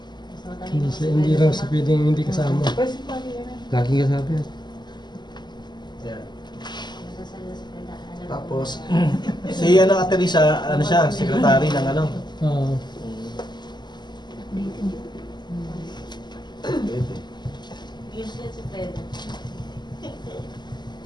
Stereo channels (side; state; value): right; late; 0.21 ms